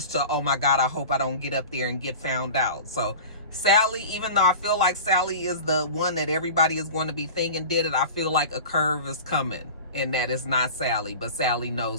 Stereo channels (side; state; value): both; inverted; correlation -0.36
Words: to, oh my God, I hope I don't get up there and get found out. So Sally, even though I feel like Sally is the one that everybody is going to be thinking did it, I feel like a curve is coming, and that is not Sally, but Sally